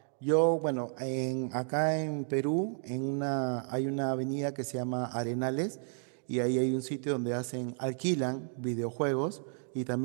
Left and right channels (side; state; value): left; silent; 56 dB below the other